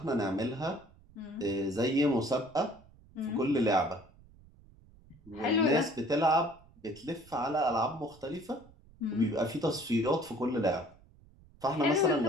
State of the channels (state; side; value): noise; right; rumble, 25 dB below the sound